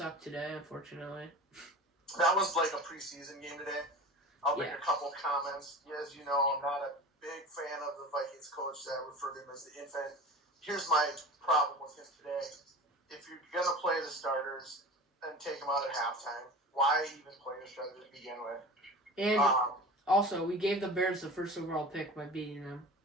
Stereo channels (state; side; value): normal; both; correlation 0.35